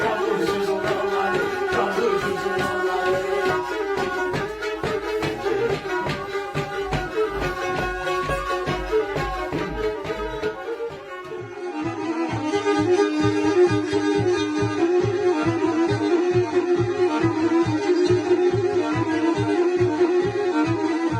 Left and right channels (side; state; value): both; identical; correlation 1.00